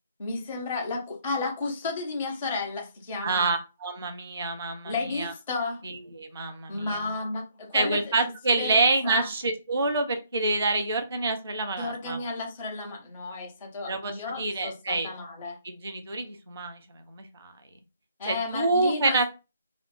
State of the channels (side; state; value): both; inverted; correlation -0.64